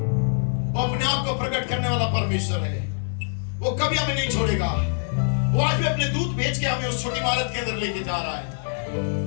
वो अपने आप को प्रकट करने वाला परमेश्वर है। वो कभी हमें नहीं छोड़ेगा। वो आज भी अपने दूत भेज के हमें उस छोटी इमारत के अंदर लेके जा रहा है।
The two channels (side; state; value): right; silent; digital silence